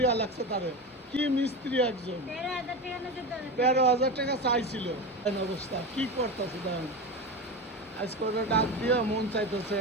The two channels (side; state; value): both; normal; correlation 0.22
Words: লাগছে তারে, কি মিস্ত্রি একজন, ১৩,০০০ টাকা চাইছিল। অবস্থা কি করতেছে দেখেন, আজকে ওরা ডাক দিয়ে মন চাইতেছে